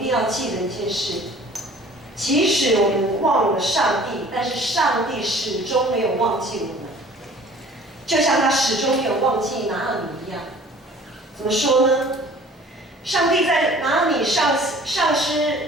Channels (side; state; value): both; normal; correlation 0.49